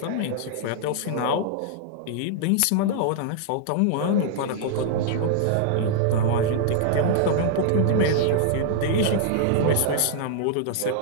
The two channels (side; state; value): both; different; correlation -0.01